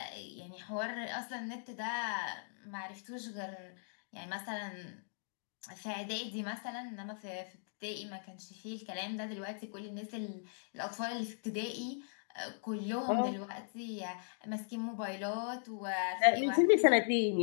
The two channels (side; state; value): right; silent; digital silence